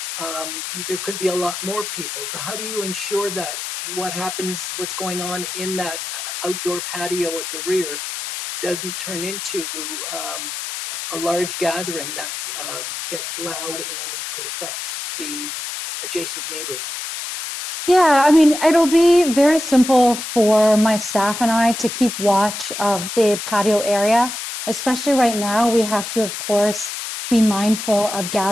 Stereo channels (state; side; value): noise; left; hiss, 6 dB below the sound